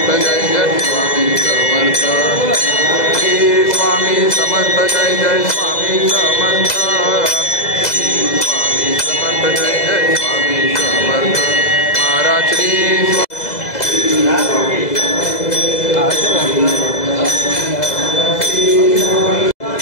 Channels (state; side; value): late; right; 2.0 ms